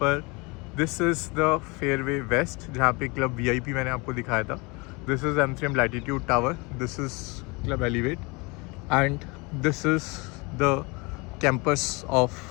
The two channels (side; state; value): right; quieter; 27.4 dB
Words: this is the Fairway West, जहाँ पे Club VIP मैंने आपको दिखाया था. This is M3M Latitude Tower, this is Club Elevate, and this is the campus of